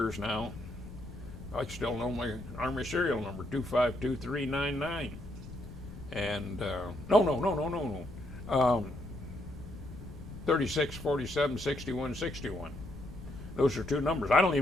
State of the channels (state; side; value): noise; left; rumble, 13 dB below the sound